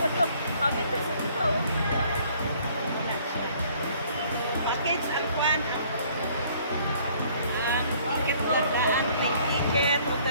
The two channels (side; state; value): both; inverted; correlation -0.59